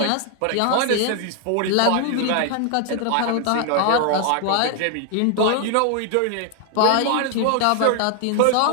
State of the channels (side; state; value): both; different; correlation 0.00